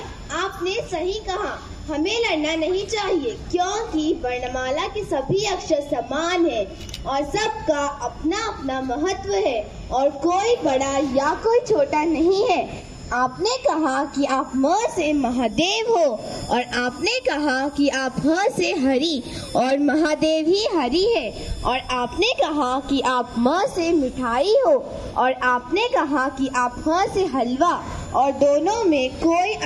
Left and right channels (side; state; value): both; identical; correlation 1.00